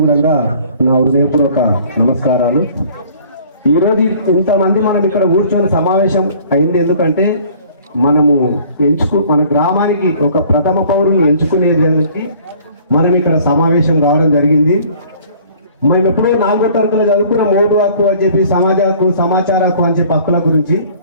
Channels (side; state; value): both; inverted; correlation -0.53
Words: కూడా నా హృదయపూర్వక నమస్కారాలు. ఈరోజు ఇంతమంది మనం ఇక్కడ కూర్చొని సమావేశం అయింది ఎందుకంటే మన గ్రామానికి ఒక ప్రథమ పౌరుని ఎంచుకునేదానికి మనం ఇక్కడ సమావేశం కావడం జరిగింది. మేము ఎప్పుడో 4వ తరగతిలో చదువుకున్న ఓటు హక్కు అని చెప్పి, సమాజ హక్కు, సమాచార హక్కు అని చెప్పి హక్కుల గురించి.